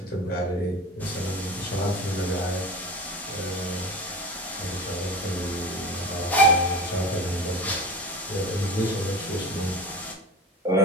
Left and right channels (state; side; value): normal; both; correlation 0.32